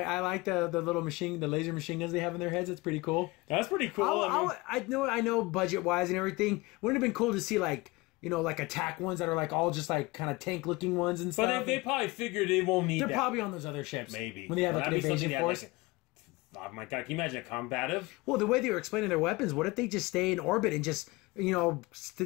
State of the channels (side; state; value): right; quieter; 22.7 dB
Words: like the little the laser machine guns they have in their heads. It's pretty cool. That's pretty cool. I know budget wise and everything. Wouldn't it have been cool to see like attack ones that are like all just like kind of tank looking ones and stuff. But they probably figured they won't need. They're probably on those other ships. Maybe when they have like an invasion force. Oh my god! Can you imagine a combative? Well, the way they were explaining their weapons, what if they just stay in orbit and just